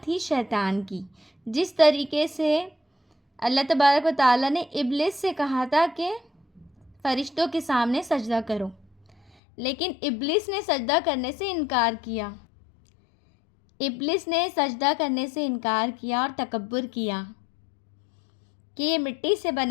تھی شیطان کی، جس طریقے سے اللہ تبارک و تعالیٰ نے ابلیس سے کہا تھا کہ فرشتوں کے سامنے سجدہ کرو، لیکن ابلیس نے سجدہ کرنے سے انکار کیا۔ ابلیس نے سجدہ کرنے سے انکار کیا اور تکبر کیا کہ یہ مٹی سے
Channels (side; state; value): right; drops out; at 9.3 s